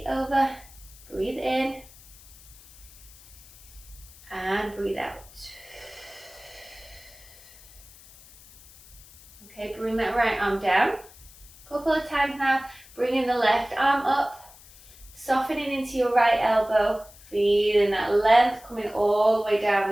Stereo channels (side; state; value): left; noise; hiss, 22 dB below the sound